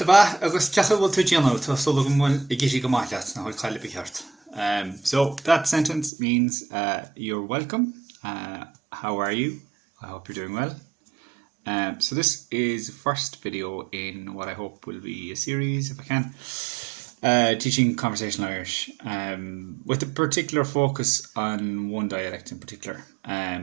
agus ceacha bhfuil tú déanamh tá sula go bhfuil I gcísí go maith leat na bhfuil chaile beart. So that sentence means you're welcome. How are you? I hope you're doing well. So this is the first video in what I hope will be a series, if I can, teaching conversational Irish, with a particular focus on one dialect in particular.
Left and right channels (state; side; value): drops out; left; at 6.1 s